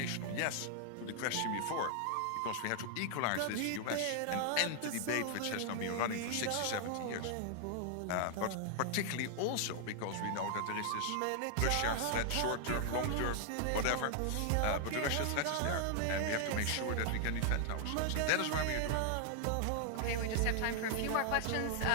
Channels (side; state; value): both; different; correlation 0.00